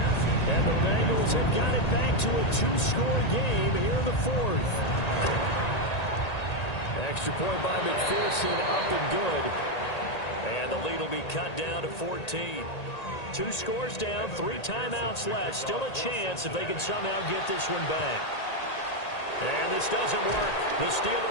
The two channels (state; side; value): late; right; 1.8 ms